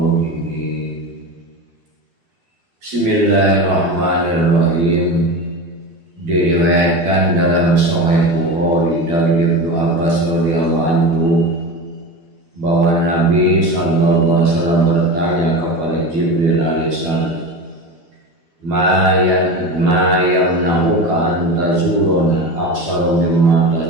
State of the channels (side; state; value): left; late; 12 ms